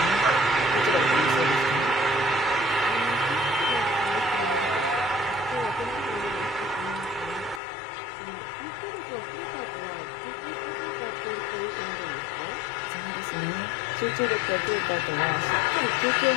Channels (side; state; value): right; drops out; at 7.6 s